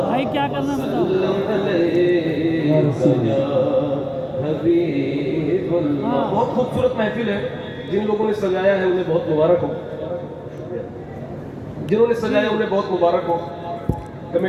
भाई, क्या करना है बताओ। हाँ। बहुत खूबसूरत महफिल है। जिन लोगों ने सजाया है उन्हें बहुत मुबारक हो, जिन्होंने सजाया उन्हें बहुत मुबारक हो,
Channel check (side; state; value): both; identical; correlation 1.00